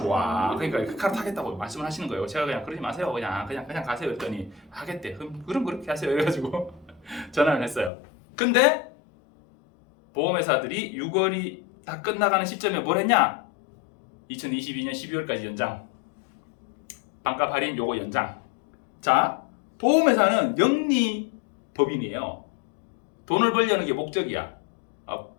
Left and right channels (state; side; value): drops out; right; at 7.9 s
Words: 그러니까 그 카드 타겠다고 말씀을 하시는 거예요. 제가 그냥 그러지 마세요. 그냥 가세요. 했더니 하겠대. 그럼 그렇게 하세요. 이래가지고 전화를 했어요. 근데 보험회사들이 6월이 다 끝나가는 시점에 뭘 했냐? 2022년 12월까지 연장. 반값 할인 요거 연장. 자, 보험회사는 영리 법인이에요. 돈을 벌려는 게 목적이야.